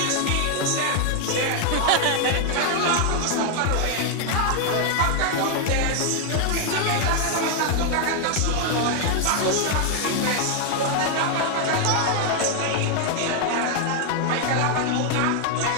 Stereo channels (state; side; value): different; both; correlation 0.00